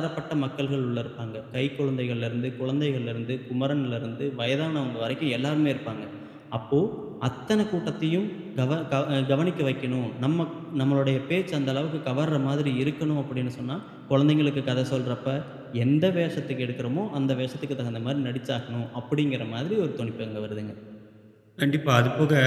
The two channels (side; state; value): both; identical; correlation 1.00